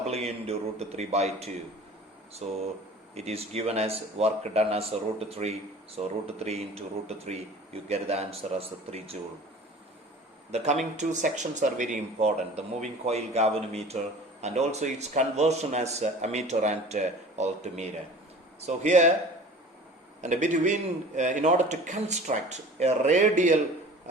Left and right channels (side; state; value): both; normal; correlation 0.42